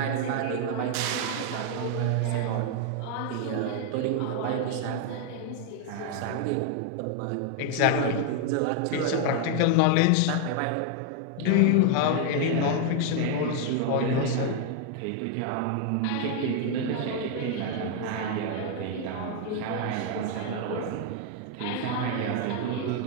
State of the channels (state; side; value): different; both; correlation 0.00